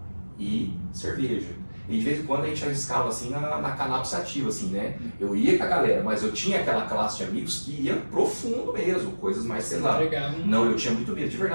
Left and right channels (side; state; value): both; inverted; correlation -1.00